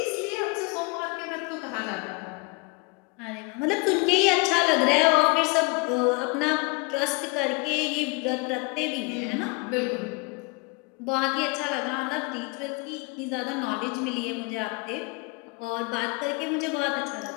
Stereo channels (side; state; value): right; quieter; 28.1 dB